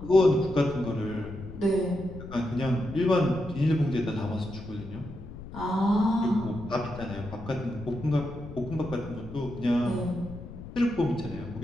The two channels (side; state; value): left; noise; rumble, 13 dB below the sound